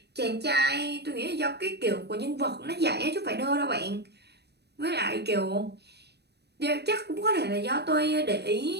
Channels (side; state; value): left; late; 0.48 ms